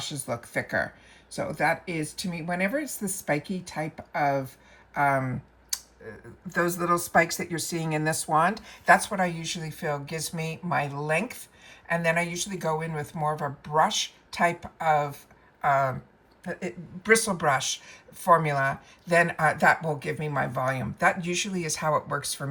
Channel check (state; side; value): identical; both; correlation 1.00